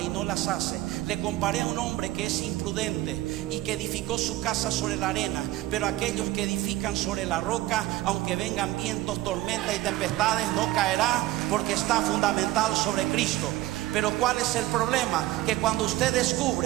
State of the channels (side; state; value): left; quieter; 16.4 dB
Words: y no las hace, le comparé a un hombre que es imprudente y que edificó su casa sobre la arena. Pero aquellos que edifican sobre la roca, aunque vengan vientos, tormentas y tempestades, no caerá, porque está fundamentado sobre Cristo. Pero ¿cuál es el problema? Que cuando usted